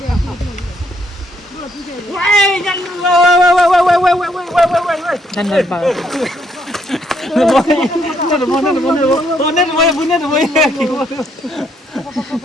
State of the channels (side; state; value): both; normal; correlation 0.71